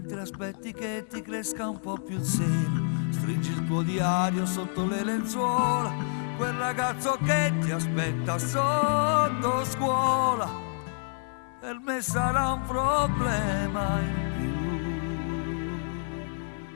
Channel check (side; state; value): right; silent; digital silence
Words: aspetti che ti cresca un po' più il seno. Stringi il tuo diario sotto le lenzuola, quel ragazzo che ti aspetta sotto scuola, per me sarà un problema in